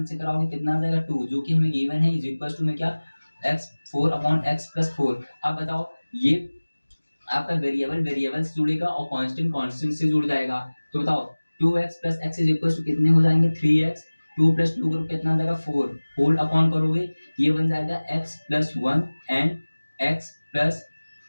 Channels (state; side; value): inverted; both; correlation -1.00